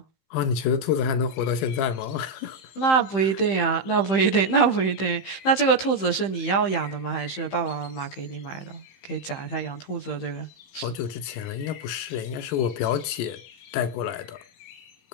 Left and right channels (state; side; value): late; right; 15 ms